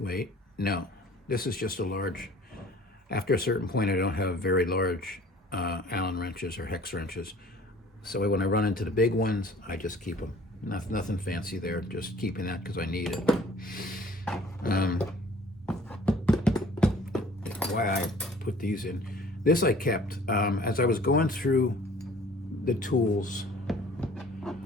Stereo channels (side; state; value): both; normal; correlation 0.51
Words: is just a large. After a certain point, I don't have very large Allen wrenches or hex wrenches. So when I run into the big ones, I just keep them. Nothing fancy there, just keeping that because I need it. Why I put these in. This I kept, as I was going through the tools,